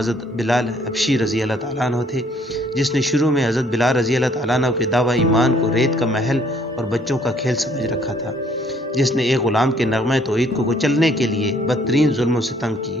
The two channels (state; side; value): normal; both; correlation 0.62